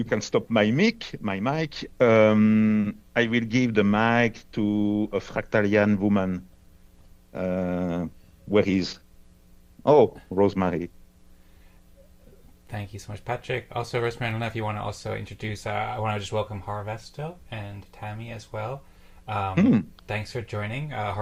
can stop my mic. I will give the mic to a Fractalian woman. Where is? Oh, Rosmari. Thank you so much, Patrick. Also, Rosmari, I don't know if you want to also introduce, I want to just welcome Harvesto and Tammy as well. Thanks for joining.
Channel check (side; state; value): both; identical; correlation 1.00